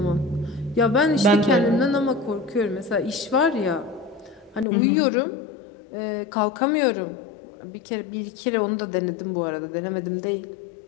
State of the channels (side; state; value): right; drops out; at 4.7 s